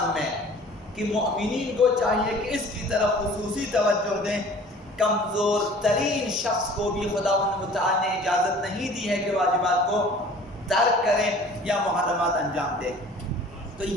میں، کہ مومنین کو چاہیے کہ اس کی طرف خصوصی توجہ دیں۔ کمزور ترین شخص کو بھی خداوند متعال نے اجازت نہیں دی ہے کہ واجبات کو ترک کریں یا محرمات انجام دیں۔ تو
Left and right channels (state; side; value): normal; both; correlation 0.47